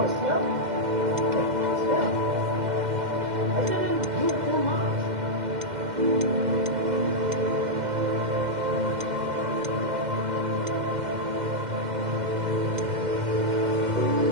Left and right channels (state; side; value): late; left; 2.1 ms